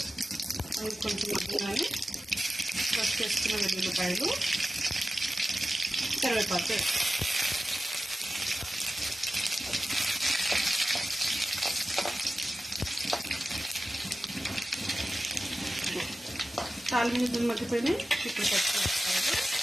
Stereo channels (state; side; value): normal; both; correlation 0.94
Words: అవి కొంచెం మగ్గినాయి. ఫస్ట్ చేసుకున్న వెల్లుల్లిపాయలు, కరివేపాకు తాలింపు గింజలు మగ్గిపోయినాయి. ఇప్పుడు పచ్చిమిరపకాయలు,